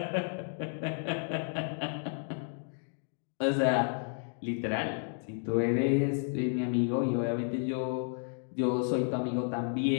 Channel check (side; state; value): right; silent; 56 dB below the other